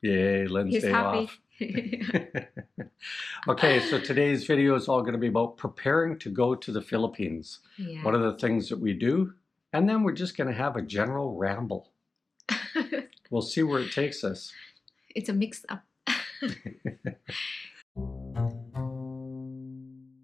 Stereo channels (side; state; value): right; quieter; 3.6 dB